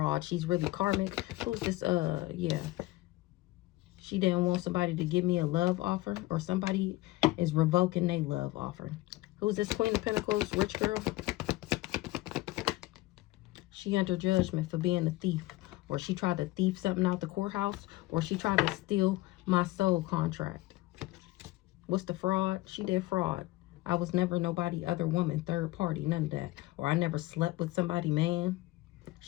She's really karmic. Who's this? Yeah. She didn't want somebody to give me a love offer, or somebody is revoking their love offer. Who's this Queen of Pentacles? Rich girl. She under judgment for being a thief, or she tried to thief something out the courthouse, or she tried to steal my soul contract. What's the fraud? She did fraud. I was never nobody other woman, third party, none of that. Or I never slept with somebody, man.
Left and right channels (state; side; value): quieter; right; 18.6 dB